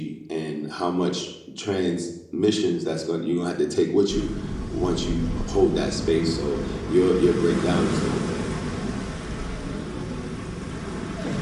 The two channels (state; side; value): identical; both; correlation 1.00